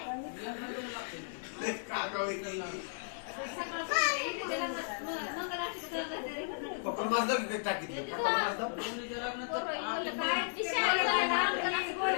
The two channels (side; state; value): right; silent; digital silence